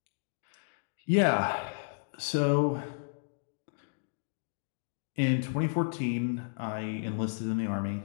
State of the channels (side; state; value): right; silent; digital silence